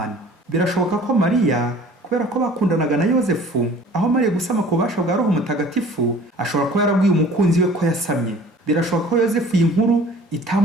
Birashoboka ko Mariya, kubera ko bakundanaga na Yozefu, aho Mariya gusama ku bubasha bwa Roho Mutagatifu, ashobora kuba yarabwiye umukunzi we ko yasamye. Birashoboka ko Yozefu iyi nkuru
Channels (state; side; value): normal; both; correlation 0.49